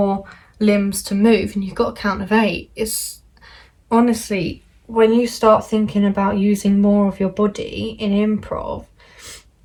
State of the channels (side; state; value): both; identical; correlation 1.00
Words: limbs to move and you've got a count of 8. It's honestly, when you start thinking about using more of your body in improv,